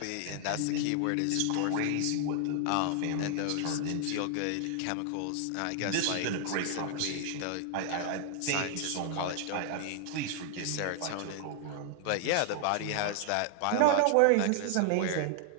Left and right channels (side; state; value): both; different; correlation 0.00